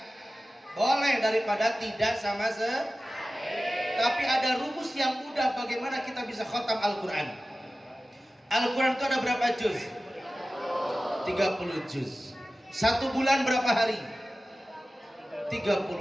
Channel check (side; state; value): both; normal; correlation 0.95